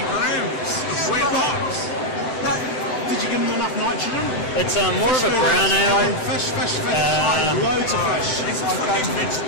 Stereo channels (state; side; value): late; right; 7.9 ms